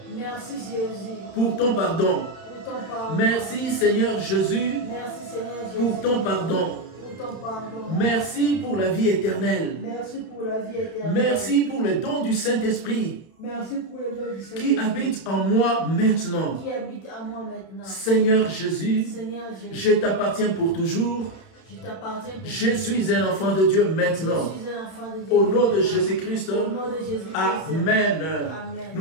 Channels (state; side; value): late; right; 31 ms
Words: Merci Jésus pour ton pardon. pour ton pardon. Merci Seigneur Jésus Merci Seigneur Jésus pour ton pardon. pour ton pardon. Merci pour la vie éternelle. Merci pour la vie éternelle. Merci pour le don du Saint-Esprit Merci pour le don du Seigneur qui habite en moi maintenant. qui habite à moi maintenant. Seigneur Jésus, Seigneur Jésus, je t'appartiens pour toujours. je t'appartiens. Je suis un enfant de Dieu maintenant. Je suis un enfant de Dieu. Au nom de Jésus-Christ, Au nom de Jésus-Christ. Amen. Amen.